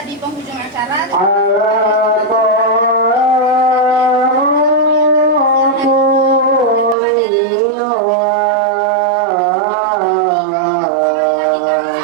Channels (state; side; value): drops out; left; at 7.0 s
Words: di penghujung acara. Allah